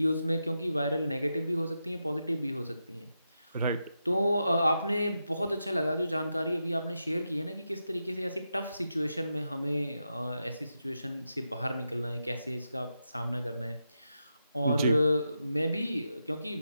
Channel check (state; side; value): inverted; both; correlation -0.87